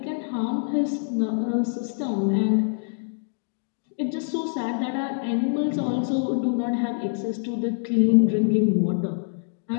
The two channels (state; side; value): silent; right; 62 dB below the other